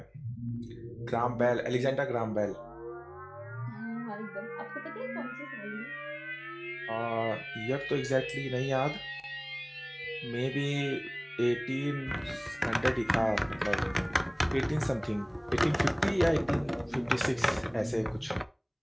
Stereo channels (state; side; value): identical; both; correlation 1.00